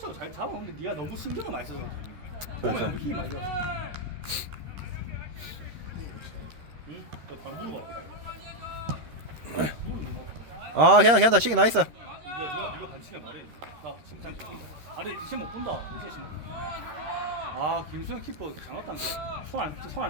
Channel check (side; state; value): left; late; 13 ms